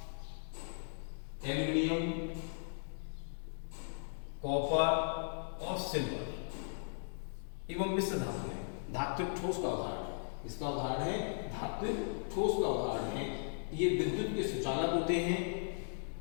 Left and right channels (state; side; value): silent; right; digital silence